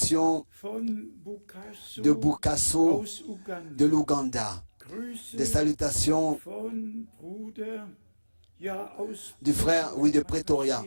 von Bukaso de Bukaso, aus Uganda. de l'Ouganda, Grüße des salutations von Bruder, ja, aus du frère, oui, de Pretoria,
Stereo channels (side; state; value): both; inverted; correlation -1.00